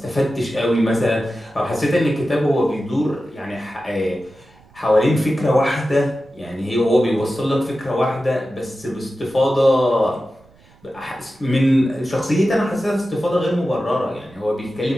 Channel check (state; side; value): noise; right; rumble, 28 dB below the sound